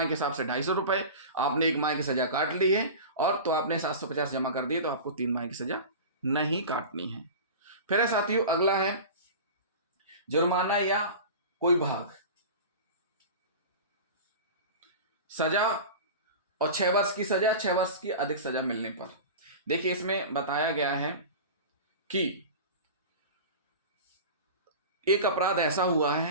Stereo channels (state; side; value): inverted; both; correlation -0.32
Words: के हिसाब से 250 रुपए। आपने 1 माह की सजा काट ली है और तो आपने 750 जमा कर दिए, तो आपको 3 माह की सजा नहीं काटनी है। फिर है साथियों, अगला है जुर्माना या कोई भाग। सजा और 6 वर्ष की सजा, 6 वर्ष की अधिक सजा मिलने पर। देखिए, इसमें बताया गया है कि एक अपराध ऐसा हुआ